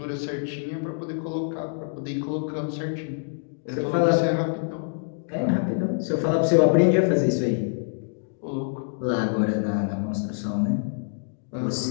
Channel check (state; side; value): silent; right; digital silence